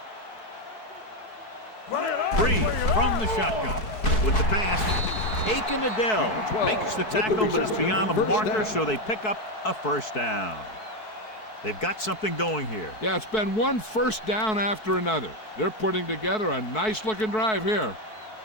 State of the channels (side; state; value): right; late; 4.6 ms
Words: Breeze from the shotgun with the pass. Aiken Adele makes the tackle, but it's beyond the marker, so they pick up a first down. They've got something going here. Yeah, it's been one first down after another. They're putting together a nice-looking drive here.